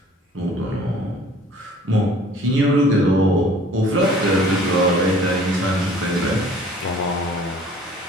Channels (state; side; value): normal; both; correlation 0.51